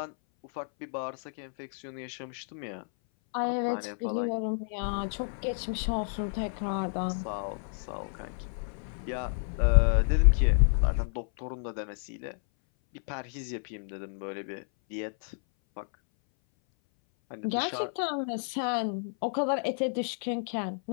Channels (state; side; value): silent; right; 58 dB below the other